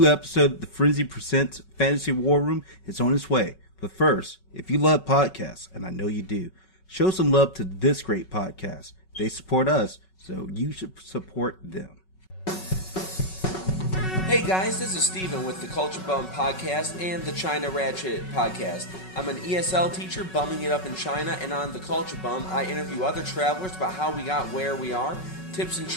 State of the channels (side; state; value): right; late; 5.4 ms